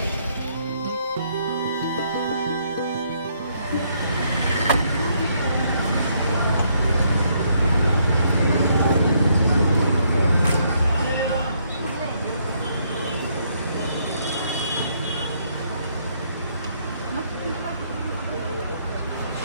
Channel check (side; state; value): both; inverted; correlation -0.71